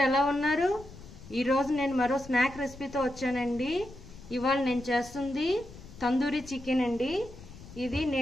ఎలా ఉన్నారు? ఈరోజు నేను మరో స్నాక్ రెసిపీతో వచ్చానండి. ఇవాళ నేను చేస్తుంది తందూరి చికెన్ అండి. ఇది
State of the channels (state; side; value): noise; left; rumble, 17 dB below the sound